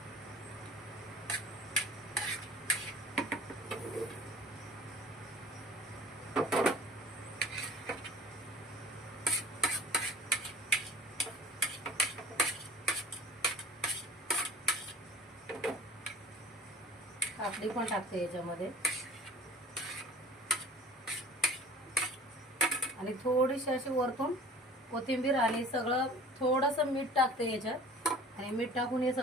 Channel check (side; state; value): both; normal; correlation 0.44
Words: काकडी पण टाकते याच्यामध्ये आणि थोडीशी अशी वरतून कोथिंबीर आणि सगळं थोडंसं मीठ टाकते याच्यात. आणि मीठ टाकून हे